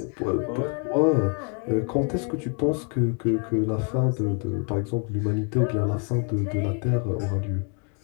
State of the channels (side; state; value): right; quieter; 39.5 dB